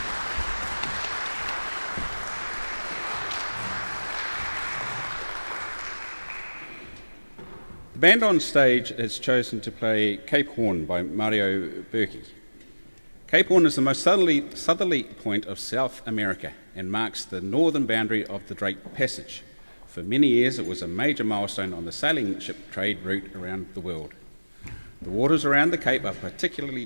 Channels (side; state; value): both; inverted; correlation -1.00